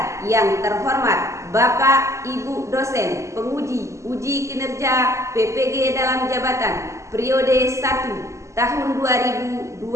yang terhormat Bapak Ibu dosen penguji uji kinerja PPG dalam jabatan periode 1 tahun 2026.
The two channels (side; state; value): left; late; 0.14 ms